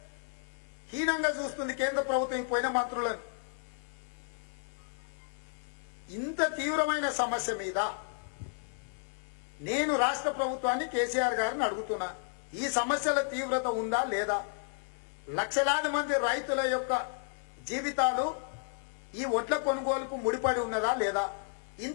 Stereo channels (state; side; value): silent; right; digital silence